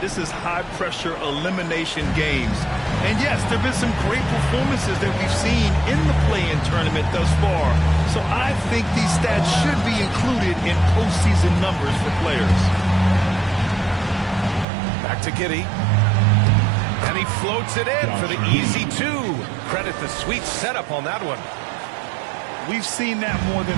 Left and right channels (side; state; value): left; drops out; at 14.7 s